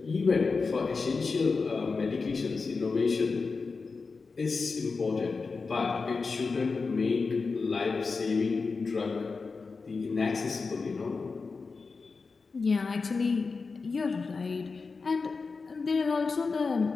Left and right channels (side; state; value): right; quieter; 4.5 dB